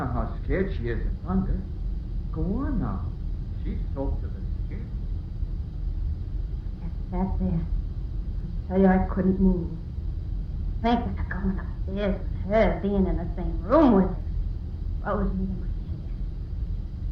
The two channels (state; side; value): identical; both; correlation 1.00